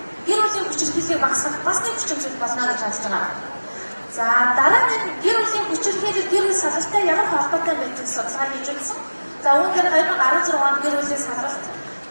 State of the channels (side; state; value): both; inverted; correlation -1.00